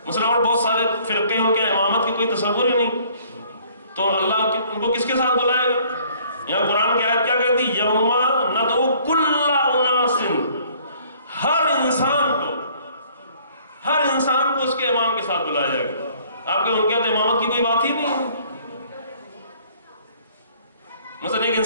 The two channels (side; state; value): both; inverted; correlation -0.58